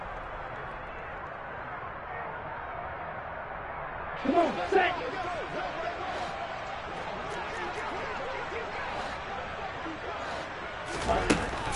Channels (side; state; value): both; identical; correlation 1.00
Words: Come on, set.